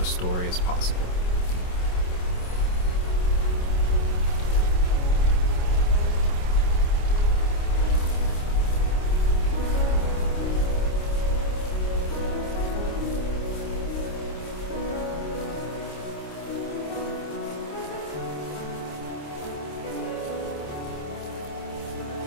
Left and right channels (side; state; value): right; late; 27 ms